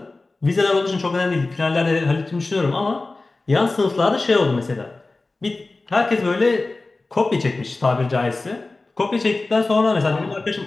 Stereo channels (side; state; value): right; quieter; 3.3 dB